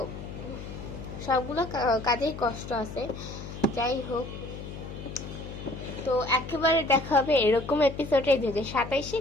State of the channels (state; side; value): noise; left; hum, 10 dB below the sound